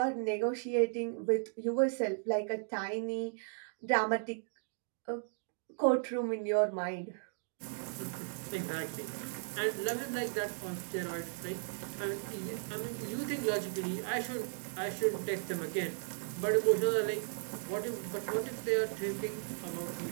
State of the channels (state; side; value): silent; left; digital silence